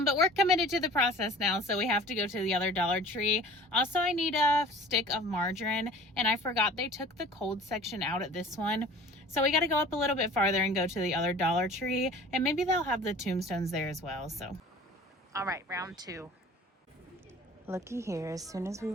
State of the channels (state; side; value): normal; both; correlation 0.45